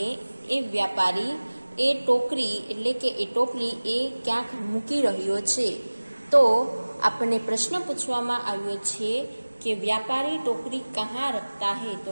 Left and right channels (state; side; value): inverted; both; correlation -1.00